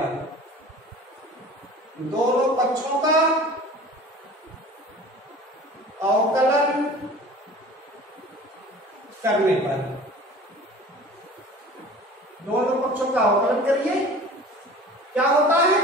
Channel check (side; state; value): both; normal; correlation 0.42